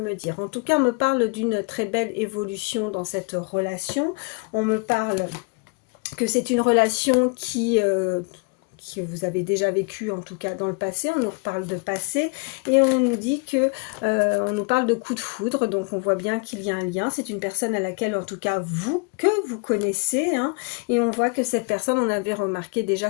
dire. En tout cas, on me parle d'une très belle évolution dans cette relation. On me parle que c'est une relation que vous avez déjà vécu en tout cas dans le passé. On nous reparle de passé et on nous dit que on nous parle de coup de foudre, donc on voit bien qu'il y a un lien. C'est une personne à laquelle en tout cas vous connaissez, hein, et on voit que cette personne, on avait remarqué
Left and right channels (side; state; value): right; quieter; 30.8 dB